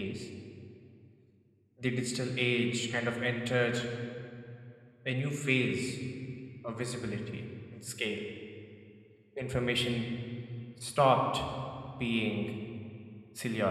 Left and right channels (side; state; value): both; identical; correlation 1.00